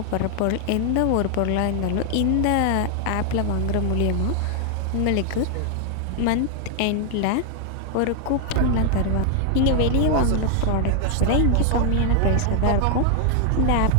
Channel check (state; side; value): different; both; correlation 0.00